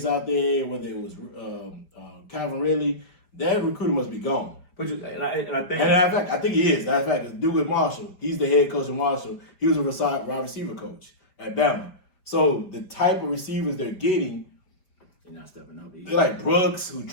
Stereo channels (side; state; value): right; late; 4.9 ms